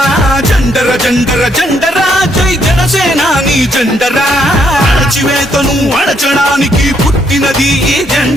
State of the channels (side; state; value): both; normal; correlation 0.73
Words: జండర జండర జండరా జై జనసేనాని జెండరా అణచివేతను అణచడానికి పుట్టినది ఈ